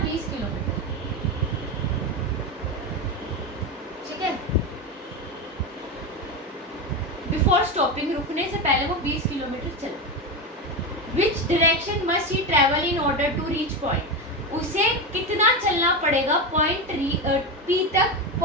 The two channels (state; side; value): normal; both; correlation 0.17